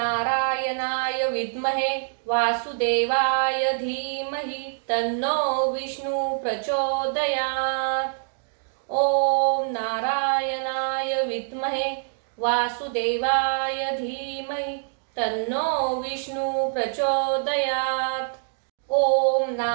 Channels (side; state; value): left; silent; digital silence